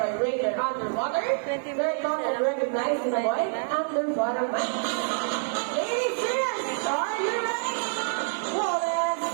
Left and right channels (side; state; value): left; silent; digital silence